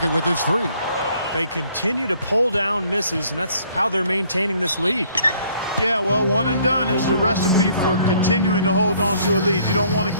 with his three. They continue to pull down misses, and that's how they're maintaining this lead. Yeah, well, one and done is the recipe for continuing to hold on to a lead. You don't want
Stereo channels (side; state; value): both; inverted; correlation -0.62